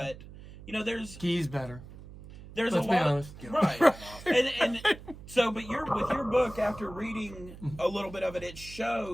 there's... Ghee's better. There's Let's a lot honest. right. and so, but with your book, after reading a little bit of it, it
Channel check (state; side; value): noise; right; hum, 16 dB below the sound